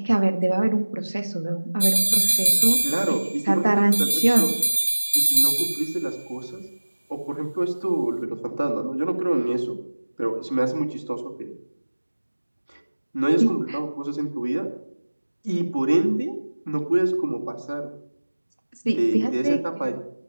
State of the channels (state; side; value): inverted; both; correlation -1.00